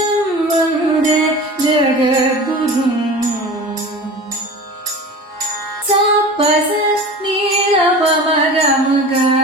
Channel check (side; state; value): both; normal; correlation 0.35